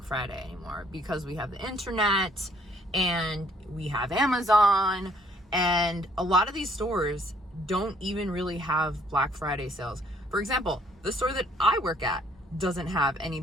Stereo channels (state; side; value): normal; both; correlation 0.64